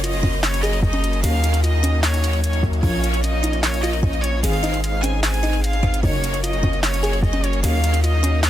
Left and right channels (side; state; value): both; normal; correlation 0.89